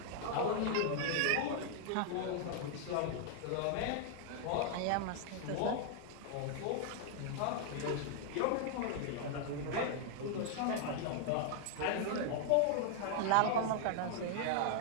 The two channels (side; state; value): both; different; correlation 0.00